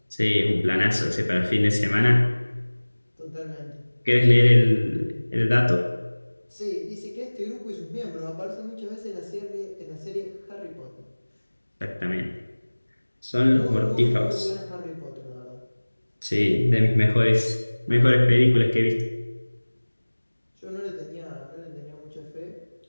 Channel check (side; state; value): both; inverted; correlation -1.00